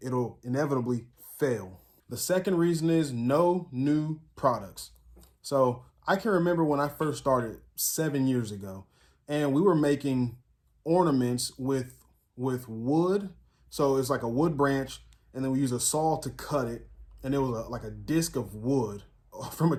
it'll inevitably fail. The second reason is no new products. So I can remember when I first started 7 years ago, and we were making ornaments with wood. So it's like a wood branch, and then we use a saw to cut it, and it was like a disc of wood from a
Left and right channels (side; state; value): both; identical; correlation 1.00